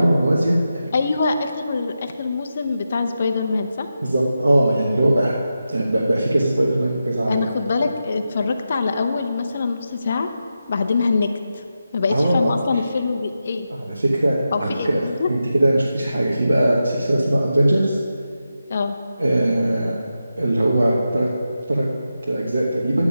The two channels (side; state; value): both; inverted; correlation -0.90